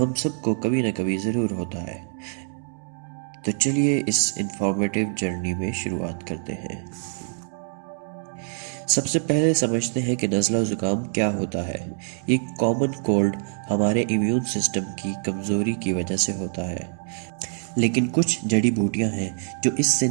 ہم سب کو کبھی نہ کبھی ضرور ہوتا ہے۔ تو چلیے اس انفارمیٹیو جرنی میں شروعات کرتے ہیں۔ سب سے پہلے سمجھتے ہیں کہ نزلہ زکام کیا ہوتا ہے۔ یہ کامن کولڈ ہمارے امیون سسٹم کی کمزوری کی وجہ سے ہوتا ہے، لیکن کچھ جڑی بوٹیاں ہیں جو اس سے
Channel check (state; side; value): silent; left; digital silence